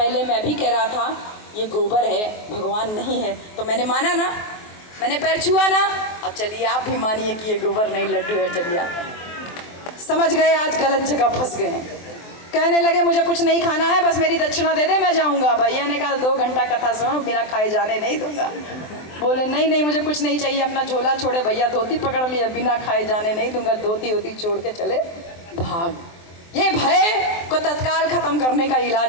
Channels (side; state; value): right; late; 23 ms